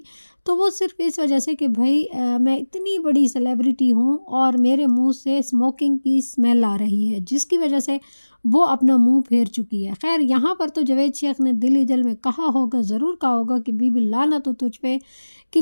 तो वो सिर्फ इस वजह से कि भाई मैं इतनी बड़ी सेलिब्रिटी हूँ और मेरे मुंह से स्मोकिंग की स्मेल आ रही है, जिसकी वजह से वो अपना मुंह फेर चुकी है। खैर यहाँ पर तो जावेद शेख ने दिल ही दिल में कहा होगा, ज़रूर कहा होगा कि बीबी लानत तो तुझ पे कि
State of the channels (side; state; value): both; inverted; correlation -1.00